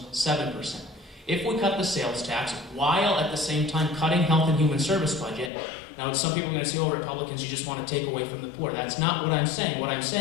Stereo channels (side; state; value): right; drops out; at 5.5 s